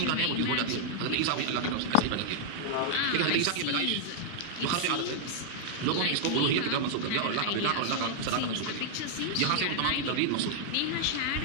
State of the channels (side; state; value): both; different; correlation -0.01